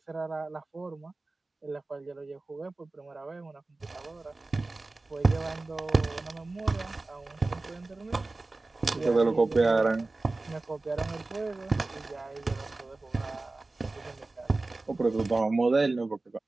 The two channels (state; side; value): quieter; left; 3.2 dB